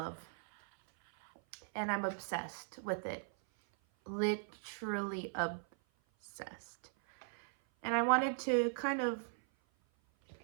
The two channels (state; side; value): silent; left; 52 dB below the other